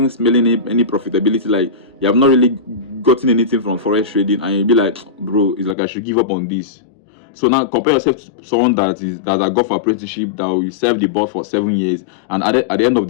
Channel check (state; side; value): drops out; right; at 5.8 s